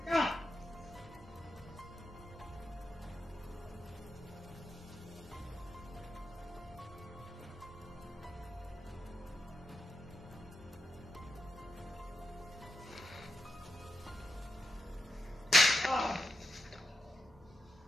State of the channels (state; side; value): normal; both; correlation 0.87